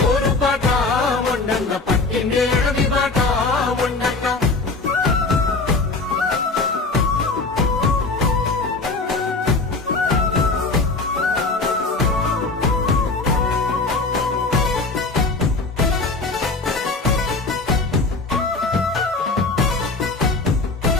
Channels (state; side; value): quieter; right; 3.7 dB